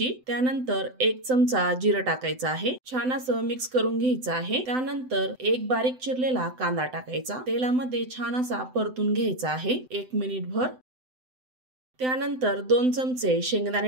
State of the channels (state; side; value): late; left; 7.8 ms